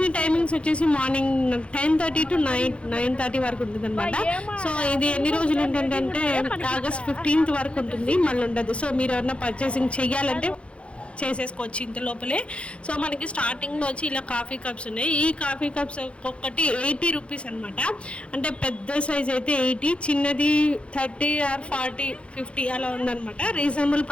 టైమింగ్స్ వచ్చేసి మార్నింగ్ 10:30 టు 9:30 వరకు ఉంటుందనమాట. సో, ఇది ఎన్ని రోజులు ఉంటుందంటే ఆగస్ట్ 15th వరకు ఉంటుంది. మళ్ళీ ఉండదు. సో, మీరు ఎవరైనా పర్చేసింగ్ చెయ్యాలంటే చేసేసుకోవచ్చు ఇంత లోపలే. సో మనకి స్టార్టింగ్లో వచ్చి ఇలా కాఫీ కప్స్ ఉన్నాయి. ఈ కాఫీ కప్స్ ఒక్కొక్కటి 80 రూపీస్ అనమాట. అంటే పెద్ద సైజ్ అయితే 80, చిన్నది 30 ఆర్ 40, 50 అలా ఉందన్నమాట. రీజనబుల్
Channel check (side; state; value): right; late; 0.060 ms